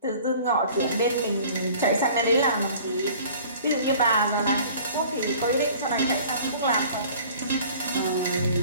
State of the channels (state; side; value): inverted; both; correlation -0.48